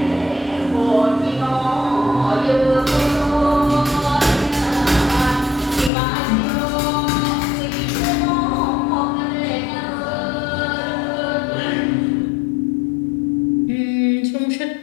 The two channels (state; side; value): drops out; right; at 5.9 s